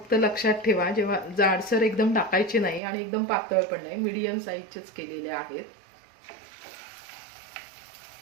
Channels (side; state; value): left; drops out; at 2.8 s